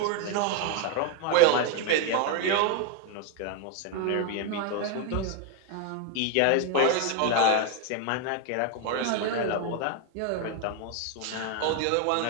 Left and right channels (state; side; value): different; both; correlation 0.01